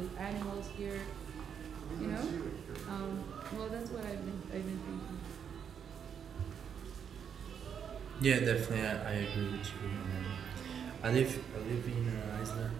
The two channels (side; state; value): left; quieter; 7.7 dB